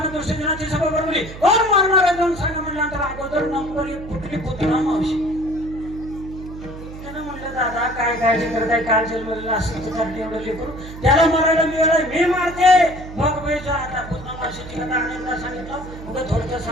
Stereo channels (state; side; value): noise; right; hum, 13 dB below the sound